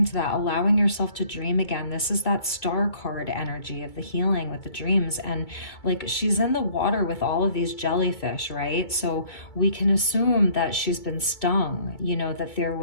to that, allowing yourself to dream again. This is that star card energy of the healing with the dreams. And like, she's in the water with all of these jellyfish, right? So we can assume that she's been stung, that there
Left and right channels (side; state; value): right; late; 2.5 ms